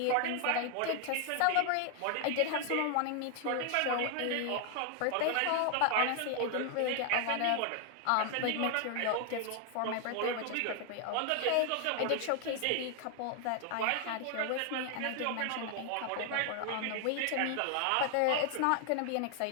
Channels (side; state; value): both; different; correlation 0.00